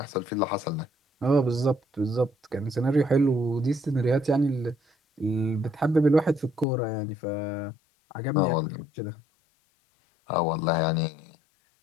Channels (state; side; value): drops out; right; at 6.7 s